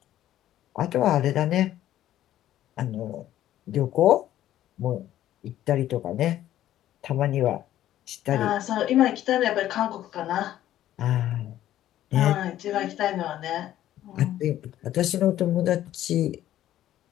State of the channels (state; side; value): quieter; right; 12.8 dB